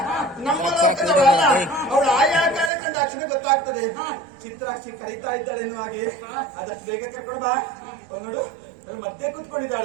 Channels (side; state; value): left; drops out; at 2.7 s